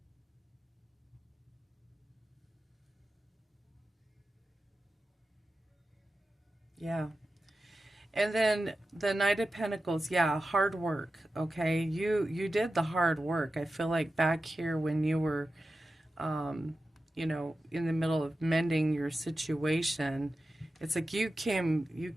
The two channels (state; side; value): normal; both; correlation 0.92